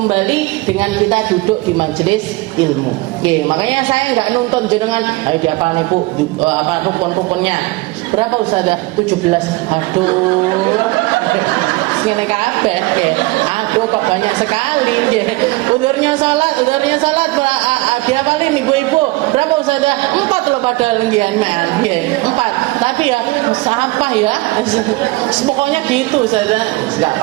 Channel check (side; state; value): left; quieter; 21.7 dB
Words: dengan kita duduk di majelis ilmu. Makanya saya nggak nuntut jenengan, ayo diapal nih Bu, apa rukun-rukunnya. Berapa Ustazah? 17. Aduh. Ngene kabeh nggih. Aduh kok banyak sekali nggih. Udurnya salat diapalin ibu-ibu. Berapa Ustazah? 4 loh padahal nggih nggih. 4. Tapi ya apa ya? Pokoknya gitu Ustazah. Enggak